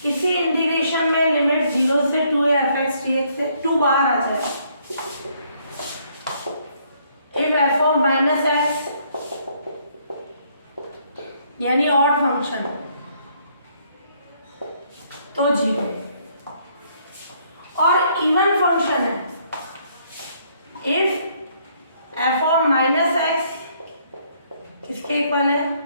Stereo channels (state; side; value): inverted; both; correlation -0.68